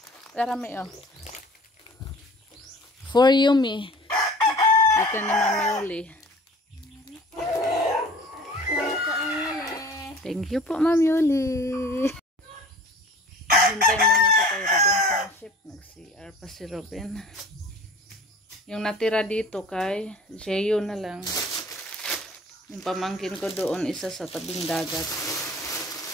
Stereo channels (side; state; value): both; normal; correlation 0.46